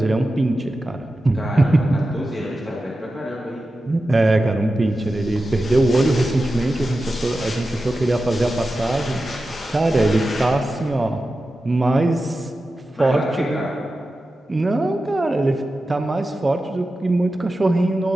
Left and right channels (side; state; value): both; normal; correlation 0.93